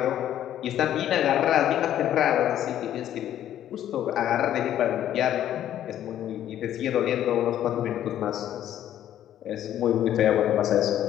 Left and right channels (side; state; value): right; quieter; 11.4 dB